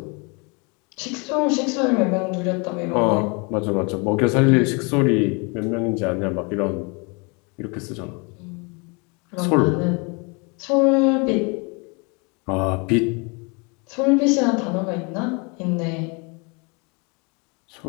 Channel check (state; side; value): quieter; right; 31.4 dB